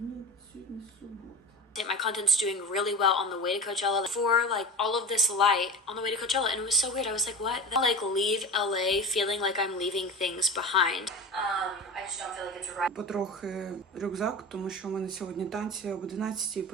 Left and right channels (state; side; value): normal; both; correlation 0.31